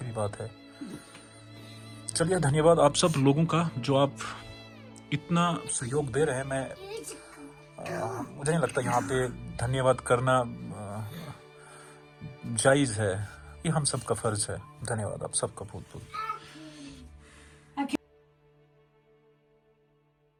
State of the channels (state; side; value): identical; both; correlation 1.00